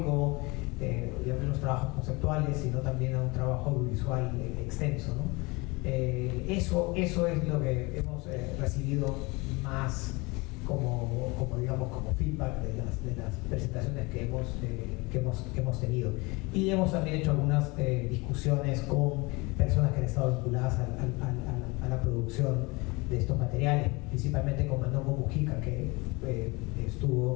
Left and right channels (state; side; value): quieter; right; 25.4 dB